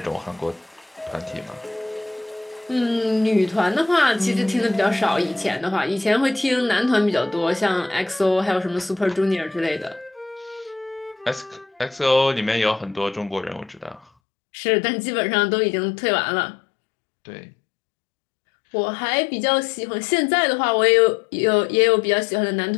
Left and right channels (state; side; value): drops out; right; at 14.1 s